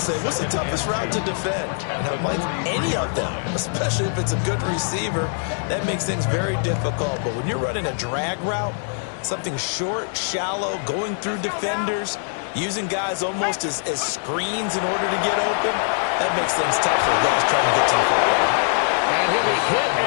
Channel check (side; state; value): right; silent; digital silence